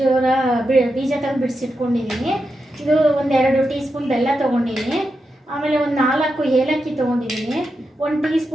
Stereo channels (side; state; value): both; normal; correlation 0.87